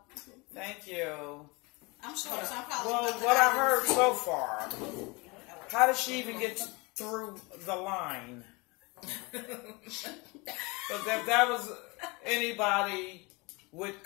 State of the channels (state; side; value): quieter; right; 26.6 dB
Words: Thank you. I'm sure. So I'm probably Well, what I heard so far, how did she even get through the line? Because if that was anybody with